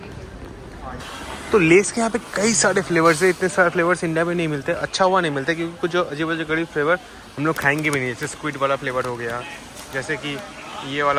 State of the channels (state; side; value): identical; both; correlation 1.00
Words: तो लेस के यहाँ पे कई सारे फ्लेवर्स है। इतने सारे फ्लेवर्स इंडिया में नहीं मिलते, अच्छा हुआ नहीं मिलता, क्योंकि कुछ जो अजीब अजीब गरीब फ्लेवर हम लोग खाएंगे भी नहीं। जैसे स्क्विड वाला फ्लेवर हो गया, जैसे कि ये